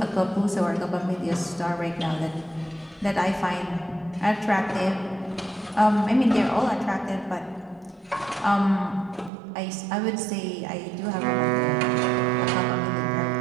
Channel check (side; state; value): left; drops out; at 9.3 s